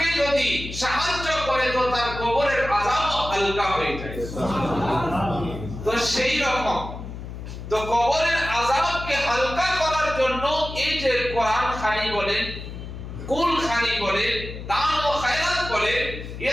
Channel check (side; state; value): left; noise; hum, 10 dB below the sound